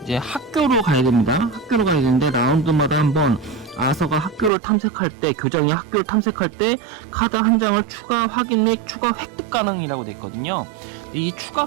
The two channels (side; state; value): left; drops out; at 4.5 s